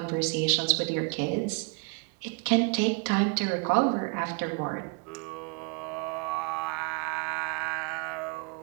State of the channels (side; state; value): left; quieter; 32.2 dB